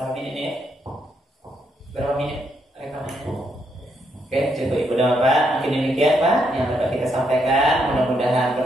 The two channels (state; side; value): normal; both; correlation 0.77